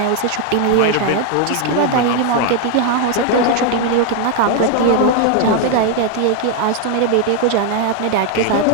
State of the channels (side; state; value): both; different; correlation 0.00